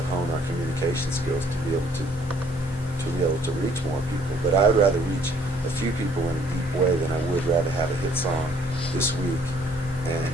hone our communication skills to be able to reach more people. But I'd rather reach a few people in a deep way than I would rather have a hit song this week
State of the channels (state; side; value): normal; both; correlation 0.61